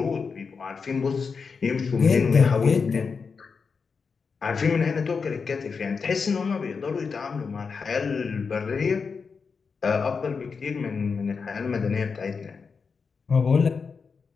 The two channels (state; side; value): quieter; right; 5.3 dB